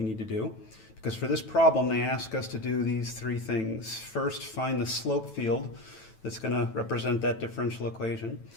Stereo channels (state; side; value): late; right; 9.2 ms